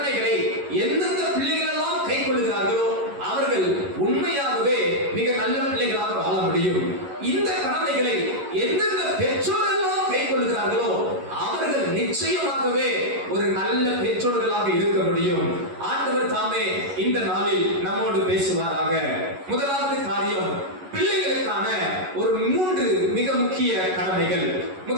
எந்தெந்த பிள்ளைகள் எல்லாம் கைக்கொள்கிறார்களோ அவர்கள் உண்மையாகவே மிக நல்ல பிள்ளைகளாக வாழ முடியும். இந்த கடமைகளை எந்தெந்த பெற்றோரெல்லாம் கைக்கொள்கிறார்களோ அவர்கள் நிச்சயமாகவே ஒரு நல்ல பெற்றோர்களாக இருக்க முடியும். ஆண்டவர் தாமே இந்த நாளில் நம்மோடு பேசுவாராக. முதலாவது காரியம், பிள்ளைகளுக்கான ஒரு 3 மிக முக்கிய கடமைகள்.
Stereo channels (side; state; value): left; late; 11 ms